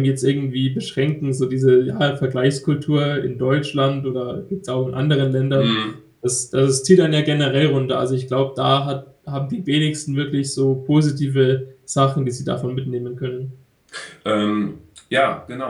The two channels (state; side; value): identical; both; correlation 1.00